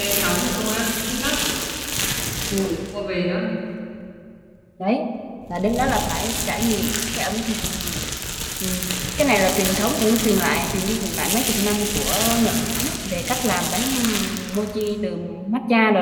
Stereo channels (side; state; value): both; identical; correlation 1.00